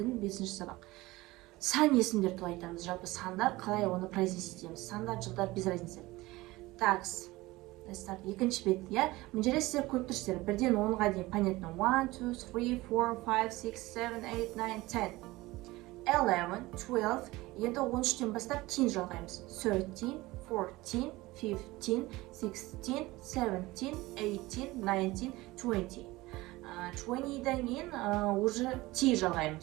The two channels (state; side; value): quieter; left; 19.8 dB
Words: 5-ші сабақ. Сан есімдер туралы айтамыз. Жалпы сандар қалай оны произнести етеміз. Сандар, жылдар без разницы. Так, let's start. Екінші бет, иә. Мына жерде сіздер көріп тұрсыздар. 1-ден 10-ға дейін понятно. 1, 2, 3, 4, 5, 6, 7, 8, 9, 10. 11, 12. Енді 13-тен бастап 10 жалғаймыз. 13, 14, 15, 16, 17, 18, 19, 20. 20-дан кейін уже 10